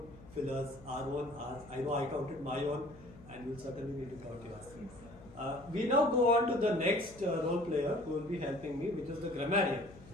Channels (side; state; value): left; noise; hum, 20 dB below the sound